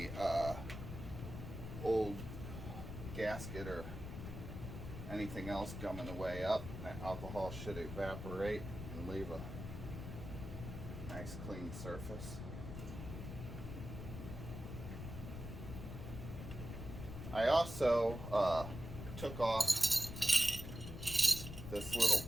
old gasket or anything else gumming the way up. That alcohol should evaporate and leave a nice clean surface. I also took off this little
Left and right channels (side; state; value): left; noise; rumble, 8 dB below the sound